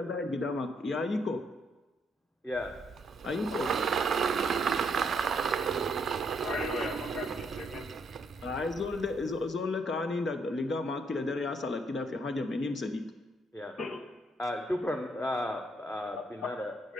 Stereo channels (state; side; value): normal; both; correlation 0.72